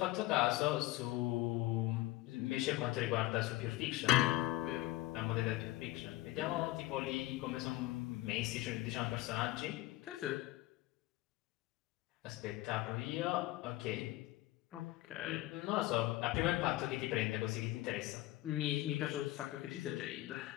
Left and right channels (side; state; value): right; quieter; 17.6 dB